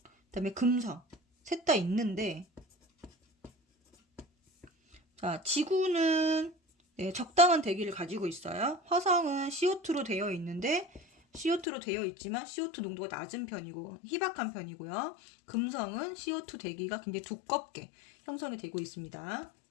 다음에 금성 셋 다 있는데, 자, 지구는 네, 적당한 대기를 가지고 있어요. 화성은 CO2로 되어 있는데, CO2로 되어 있지만 CO2 농도가 낮은 편이고 희박한 편이고요. 금성은 CO2 대기가 굉장히 두껍게 형성이 되고 있습니다.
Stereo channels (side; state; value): right; drops out; at 11.7 s